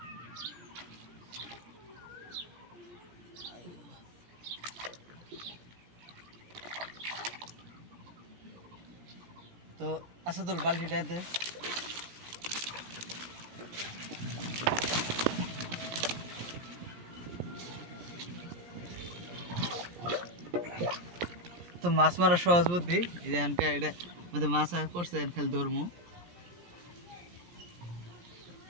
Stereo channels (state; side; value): late; left; 17 ms